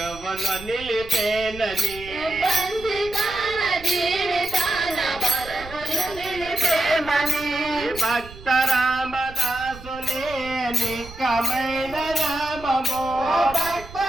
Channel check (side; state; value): right; noise; rumble, 16 dB below the sound